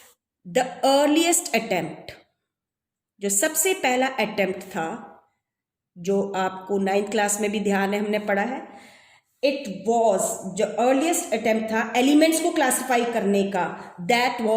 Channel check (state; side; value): identical; both; correlation 1.00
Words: द अर्लीस्ट अटेम्प्ट, जो सबसे पहला अटेम्प्ट था, जो आपको 9th क्लास में भी ध्यान है, हमने पढ़ा है, इट वॉज, जो अर्लीस्ट अटेम्प्ट था एलिमेंट्स को क्लासिफाई करने का, दैट